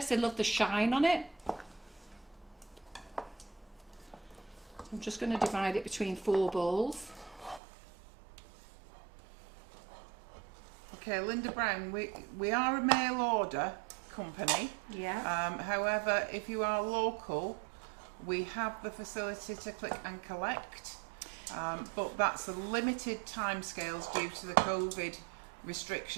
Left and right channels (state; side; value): drops out; left; at 7.6 s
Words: they love the shine on it. I'm just going to divide it between 4 bowls. Okay, Linda Brown, we are a mail order company. Yeah. However, if you are local, we have the facility to click and collect, but that's a limited timescales due to the COVID